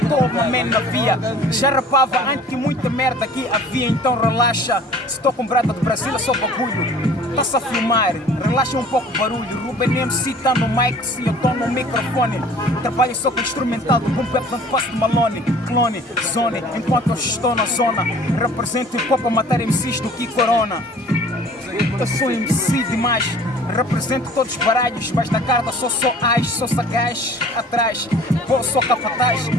estou uma man na via. Já rapava antes que muita merda aqui havia, então relaxa. Se estou com brada do Brasil é só bagulho. Passa a filmar, relaxa um pouco o barulho. Ruben MC tá no mic, se eu tô no microfone. Trabalho só com instrumental do boom bap, não faço de Malone, clone, zone. Enquanto eu estou na zona, represento hip hop a matar MCs do que Corona. Eu sou MC demais, represento todos os baralhos, mas na carta sou as, sou sagaz atrás. Pô, sou capataz,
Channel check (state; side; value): normal; both; correlation 0.49